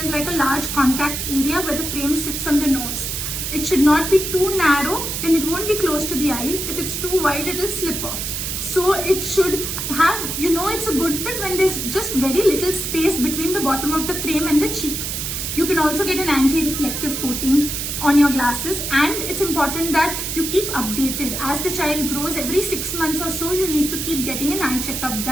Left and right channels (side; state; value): right; noise; hiss, 3 dB below the sound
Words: like a large contact area where the frame sits on the nose. It should not be too narrow, then it won't be close to the eyes. If it's too wide, it will slip off. So it should have, it's a good fit when there's just very little space between the bottom of the frame and the cheek. You can also get an anti-reflective coating on your glasses, and it's important that you keep updated. As the child grows, every 6 months or so, you need to keep getting an eye checkup